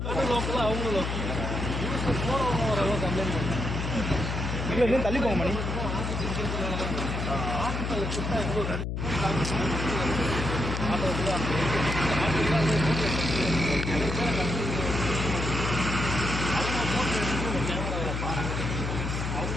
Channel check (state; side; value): noise; left; hum, 2 dB below the sound